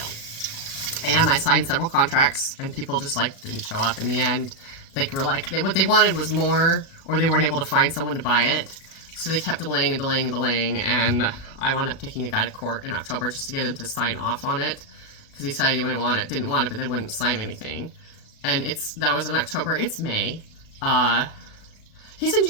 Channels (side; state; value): right; late; 37 ms